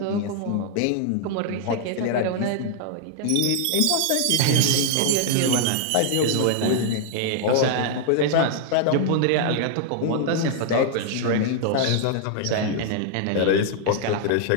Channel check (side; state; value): both; different; correlation 0.00